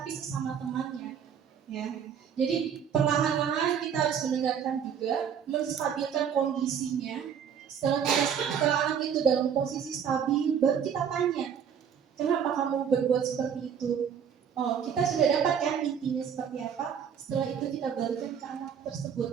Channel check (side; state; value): left; quieter; 7.8 dB